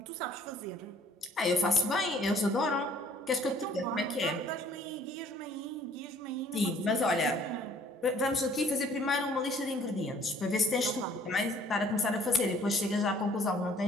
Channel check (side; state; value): both; normal; correlation 0.57